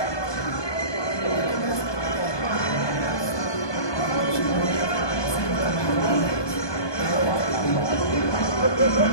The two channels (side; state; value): right; late; 1.2 ms